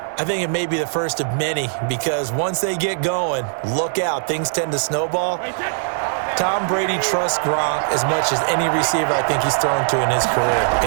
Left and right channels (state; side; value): silent; left; digital silence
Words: I think it may be the first of many because once they get going, look out, things tend to snowball. Tom Brady trusts Gronk as much as any receiver I think he's thrown to in his career.